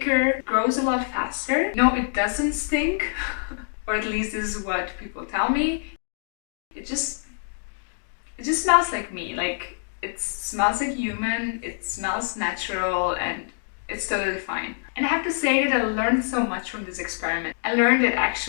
grows a lot faster. No, it doesn't stink, or at least this is what people tell me. It just smells like me. Like, it smells like human, it smells natural, and it's totally fine. And I have to say that I learned so much from this experiment. I learned that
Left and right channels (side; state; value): right; silent; digital silence